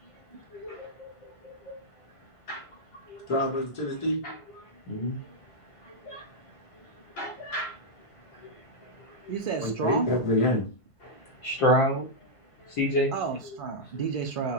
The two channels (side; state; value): right; late; 1.5 ms